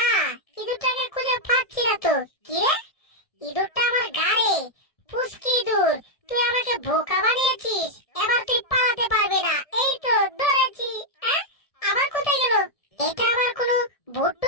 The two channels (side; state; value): right; late; 1.7 ms